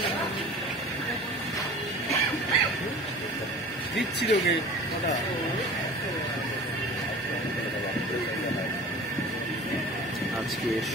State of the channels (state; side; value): normal; both; correlation 0.40